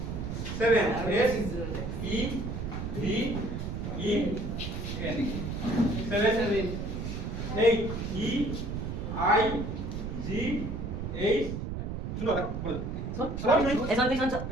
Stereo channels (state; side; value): noise; right; rumble, 4 dB below the sound